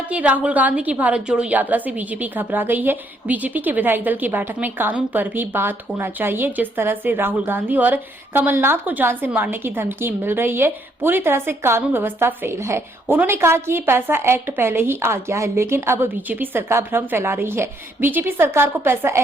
कि राहुल गांधी की भारत जोड़ो यात्रा से बीजेपी घबरा गई है। बीजेपी के विधायक दल की बैठक में कानून पर भी बात होना चाहिए। जिस तरह से राहुल गांधी और कमलनाथ को जान से मारने की धमकी मिल रही है, पूरी तरह से कानून व्यवस्था फेल है। उन्होंने कहा कि पैसा एक्ट पहले ही आ गया है, लेकिन अब बीजेपी सरकार भ्रम फैला रही है। बीजेपी सरकार को पैसा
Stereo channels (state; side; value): normal; both; correlation 0.71